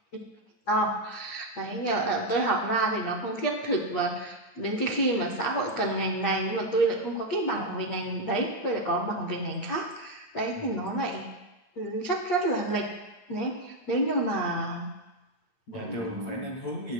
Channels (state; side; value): late; right; 8.6 ms